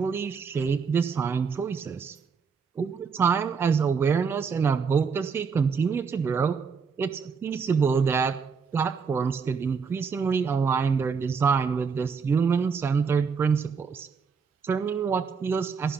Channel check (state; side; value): quieter; left; 5.7 dB